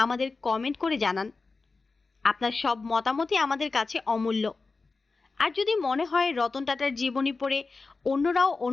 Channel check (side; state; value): right; quieter; 4.0 dB